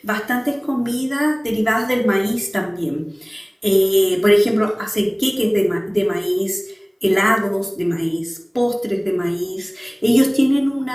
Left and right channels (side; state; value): both; identical; correlation 1.00